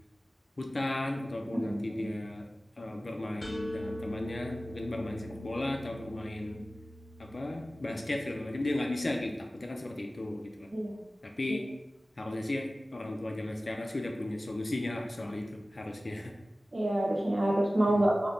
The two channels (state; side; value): normal; both; correlation 0.96